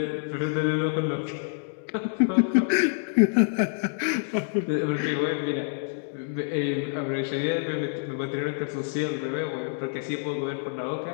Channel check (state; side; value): silent; right; digital silence